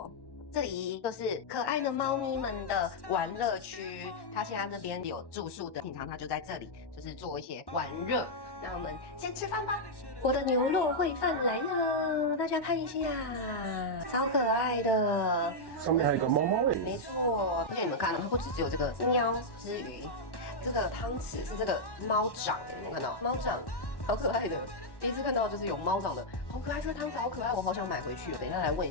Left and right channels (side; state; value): right; late; 1.1 ms